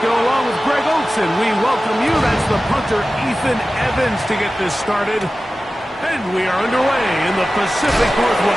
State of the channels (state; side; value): normal; both; correlation 0.95